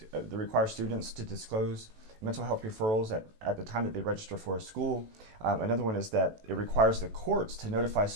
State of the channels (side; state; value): left; late; 18 ms